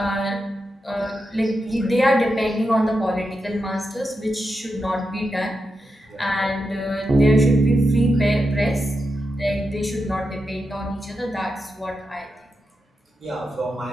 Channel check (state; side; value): normal; both; correlation 0.88